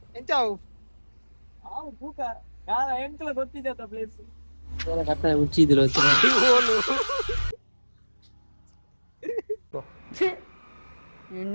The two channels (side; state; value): both; inverted; correlation -1.00